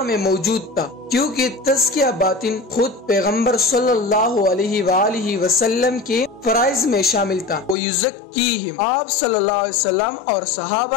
میں موجود تھا، کیونکہ تزکیہ باطن خود پیغمبر صلی اللہ علیہ وآلہ وسلم کے فرائض میں شامل تھا۔ وَيُزَكِّيهِمْ، آپ صلی اللہ علیہ وسلم اور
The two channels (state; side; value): drops out; right; at 7.8 s